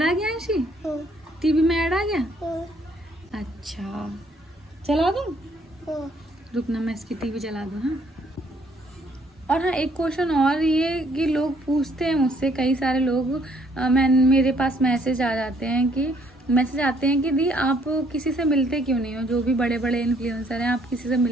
आ गया अंशी, टीवी में ऐड आ गया। अच्छा चला दूँ, रुकना मैं इसकी टीवी चला दूँ। हाँ, और हाँ एक क्वेश्चन और, ये कि लोग पूछते हैं मुझसे, कई सारे लोग मेरे पास मैसेज आते हैं कि दी आप किसी से मिलते क्यों नहीं हो, जो भी बड़े बड़े इन्फ्लुएंसर हैं, आप किसी से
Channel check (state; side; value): normal; both; correlation 0.66